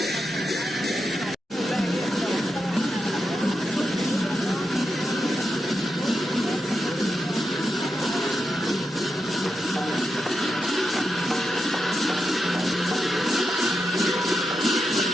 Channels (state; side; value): normal; both; correlation 0.87